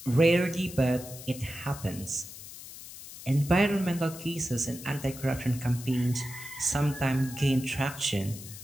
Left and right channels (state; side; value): noise; left; hiss, 14 dB below the sound